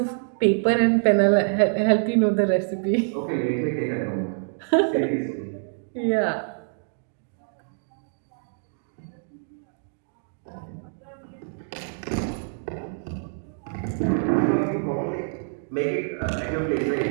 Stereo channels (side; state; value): left; silent; digital silence